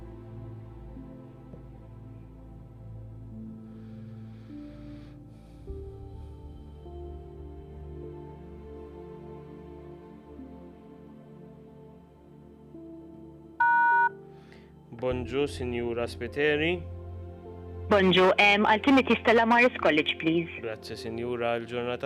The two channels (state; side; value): identical; both; correlation 1.00